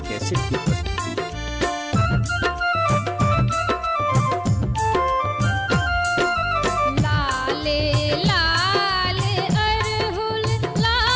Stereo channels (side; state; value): both; identical; correlation 1.00